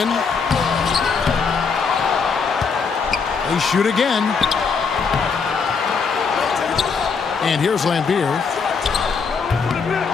They shoot again. And here's Lambier.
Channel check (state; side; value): quieter; right; 5.4 dB